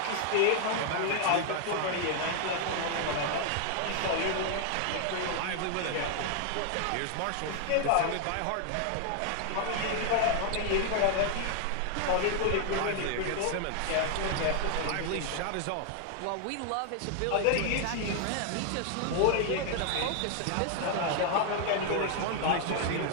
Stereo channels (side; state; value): both; different; correlation 0.00